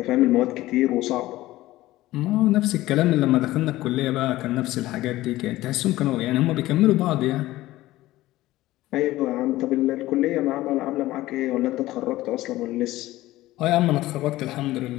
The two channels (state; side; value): quieter; right; 16.7 dB